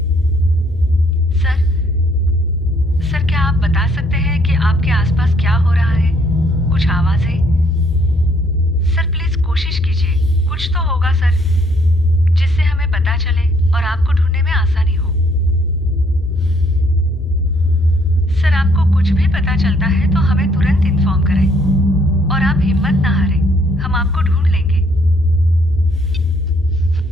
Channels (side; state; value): both; normal; correlation 0.66